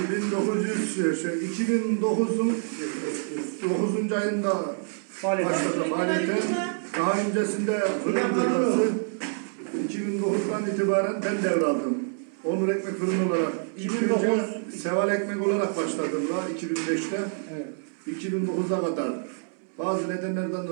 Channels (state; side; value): silent; left; 60 dB below the other